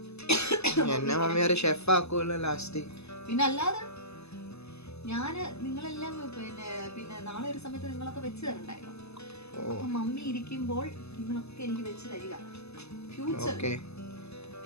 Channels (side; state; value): right; late; 0.79 ms